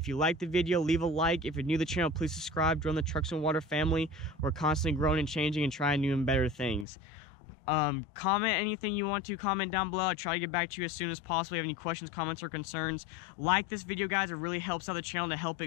you liked the video, leave a like. If you're new to the channel, please subscribe. Join the Trucks and Water family. We're constantly growing and changing and trying new and better things. Comment anything you want to. Comment down below. I'll try to get back to you as soon as possible. If you have any questions, comments, or concerns, like this video, guys. It really helps out the channel to help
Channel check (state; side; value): drops out; right; at 6.9 s